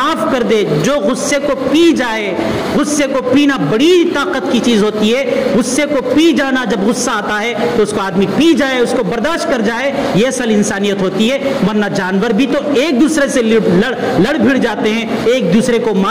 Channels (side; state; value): both; identical; correlation 1.00